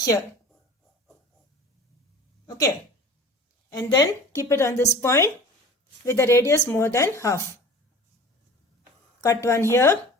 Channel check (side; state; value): both; normal; correlation 0.41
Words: Okay, and then keep it on this point with the radius more than half. Cut one here.